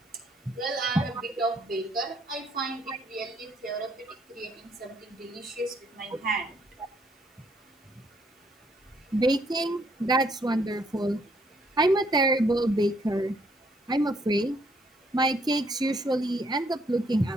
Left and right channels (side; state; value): both; normal; correlation 0.69